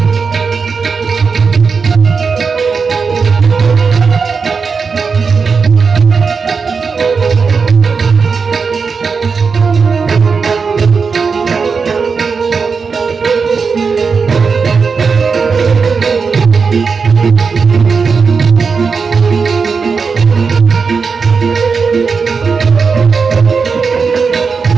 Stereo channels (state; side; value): quieter; left; 5.2 dB